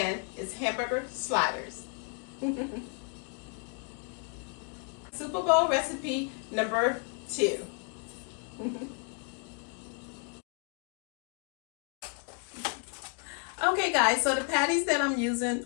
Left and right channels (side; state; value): right; quieter; 38.8 dB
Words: it's hamburger sliders. Super Bowl recipe number 2. Okay guys, so the patties that I'm using